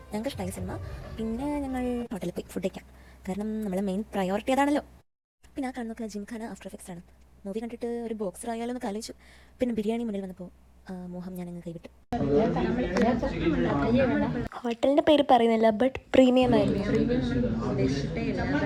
ഞങ്ങൾക്ക് ഇഷ്ടമായി സിനിമ. പിന്നെ ഞങ്ങൾ ഹോട്ടലിൽ പോയി ഫുഡ് കഴിക്കാം. കാരണം നമ്മളെ മെയിൻ പ്രയോറിറ്റി അതാണല്ലോ. പിന്നെ ആ കാണുന്നൊക്കെ ജിംഖാന ആഫ്റ്റർ എഫക്ട്സ് ആണ്. മൂവി കണ്ടിട്ട് ഒരു ബോക്സർ ആയാലോ എന്ന് ആലോചിച്ചു. പിന്നെ ബിരിയാണി മുന്നിൽ വന്നപ്പോൾ മോഹം ഞാനങ്ങ് കൈവിട്ടു. ഹോട്ടലിൻ്റെ പേര് പറയുന്നില്ല, ബട്ട് പ്രീമിയം ആയിരുന്നു.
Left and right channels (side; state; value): both; identical; correlation 1.00